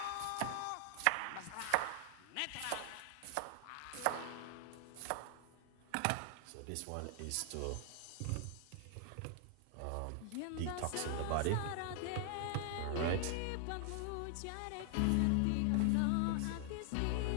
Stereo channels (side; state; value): both; different; correlation 0.00